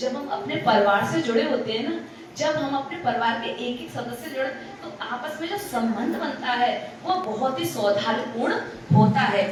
हम अपने परिवार से जुड़े होते हैं ना, जब हम अपने परिवार के एक एक सदस्य जुड़े, तो आपस में जो संबंध बनता है वो बहुत ही सौहार्दपूर्ण होता है।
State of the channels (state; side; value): identical; both; correlation 1.00